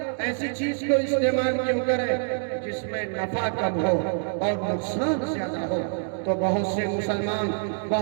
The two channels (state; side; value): silent; left; digital silence